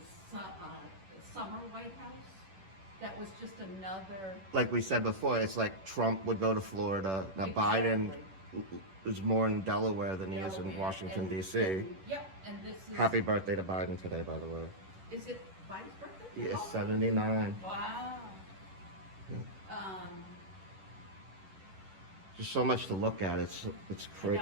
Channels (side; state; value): left; late; 10 ms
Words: summer White House. That was just another. Like we said before, it's like Trump would go to Florida. Now Biden is more in Delaware than he is in Delaware, Washington, and- D.C. Yep, and this is. Happy birthday to Biden today, by the way. Is it Biden's birthday? He is Oh, 79. wow. Just so much to look at. It's